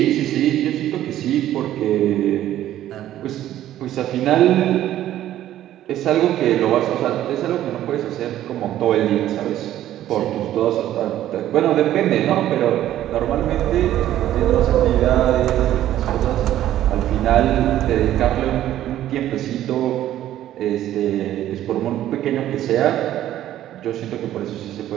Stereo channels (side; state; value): left; quieter; 12.7 dB